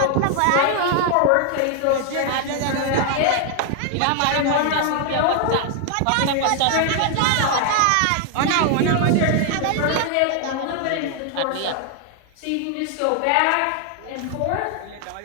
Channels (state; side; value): different; both; correlation 0.00